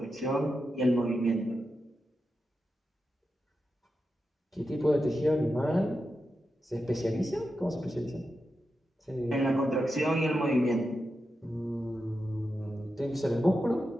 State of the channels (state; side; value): normal; both; correlation 0.89